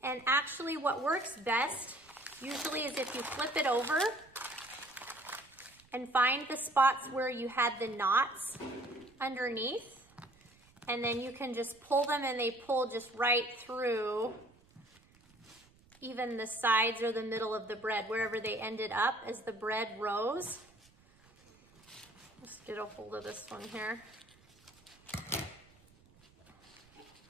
And actually what works best usually is if you flip it over and find the spots where you had the knots underneath, and then you can just pull them, and they pull just right through even the sides or the middle of the bread, wherever they ended up as the bread rose. Let's get a hold of this one here.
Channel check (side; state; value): right; noise; rumble, 29 dB below the sound